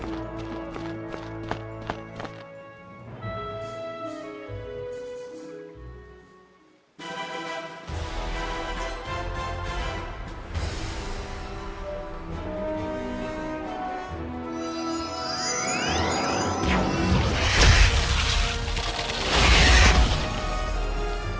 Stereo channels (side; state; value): both; identical; correlation 1.00